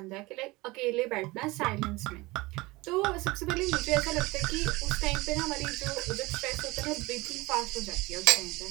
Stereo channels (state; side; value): quieter; left; 22.1 dB